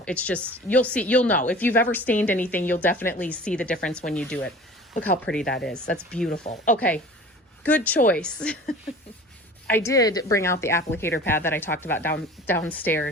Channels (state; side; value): normal; both; correlation 0.43